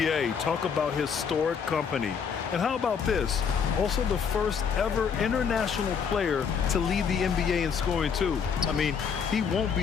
talk about historic company. And how about this? Also the first ever international player to lead the NBA in scoring, too. I mean, he won't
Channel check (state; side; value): quieter; right; 6.6 dB